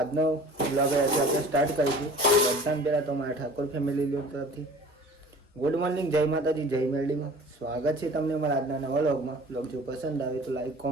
વ્લોગ આપણે સ્ટાર્ટ કરીશું. બધાને પહેલાં તો મારા ઠાકોર ફેમિલી તરફથી ગુડ મોર્નિંગ, જય માતાજી, જય મેરડીમાં સ્વાગત છે તમને મારા આજના નવા વ્લોગમાં. વ્લોગ જો પસંદ આવે તો લાઈક,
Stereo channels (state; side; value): normal; both; correlation 0.45